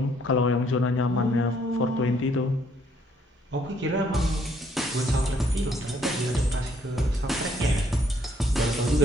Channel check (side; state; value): both; normal; correlation 0.67